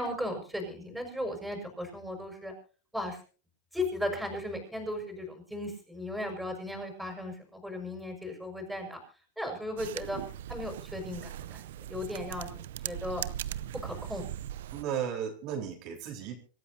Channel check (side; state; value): both; normal; correlation 0.43